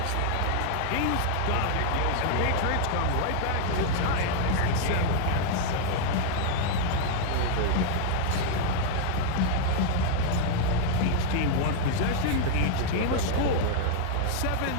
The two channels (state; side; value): different; both; correlation 0.00